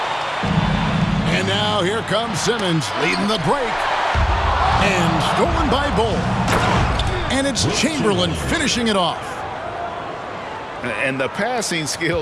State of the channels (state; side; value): identical; both; correlation 1.00